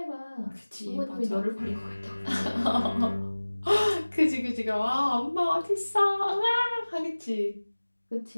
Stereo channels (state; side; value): inverted; both; correlation -1.00